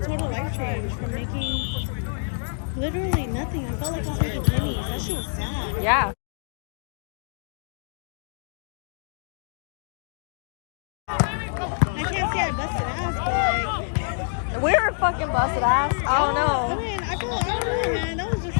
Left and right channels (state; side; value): silent; right; digital silence